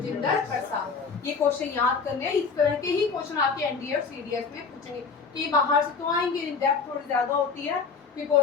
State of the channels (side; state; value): right; quieter; 5.2 dB